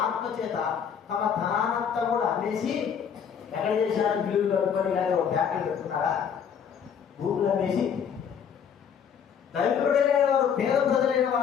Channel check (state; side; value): quieter; right; 7.6 dB